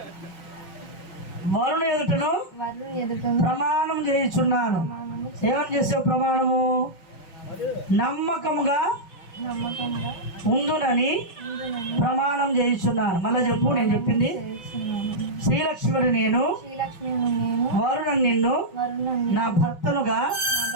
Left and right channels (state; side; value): late; right; 5.9 ms